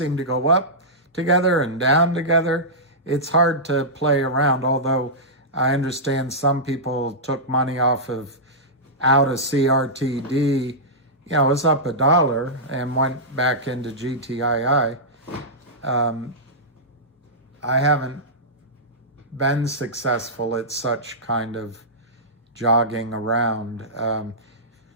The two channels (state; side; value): normal; both; correlation -0.14